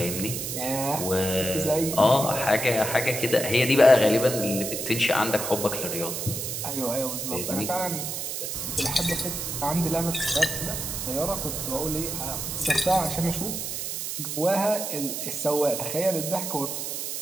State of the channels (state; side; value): noise; right; hiss, 4 dB below the sound